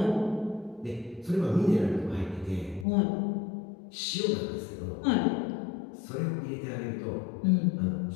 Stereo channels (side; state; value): right; drops out; at 2.9 s